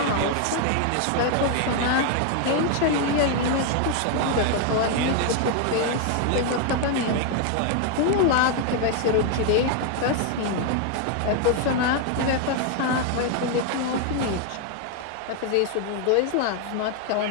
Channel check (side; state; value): both; different; correlation 0.00